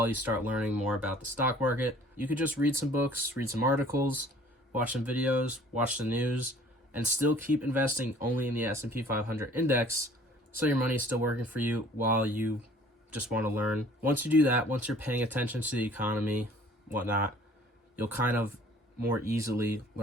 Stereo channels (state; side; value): normal; both; correlation 0.53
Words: you start learning more about the stock market. You could just read some books, read some articles, watch some videos, watch the news, and still keep investing only in the S&P 500 index, so your money is still working for you while you just want to learn. Once you do that, once you're paying attention to the economy, whatnot, you'll kind of more easily